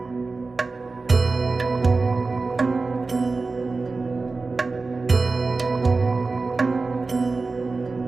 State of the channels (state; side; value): quieter; left; 3.8 dB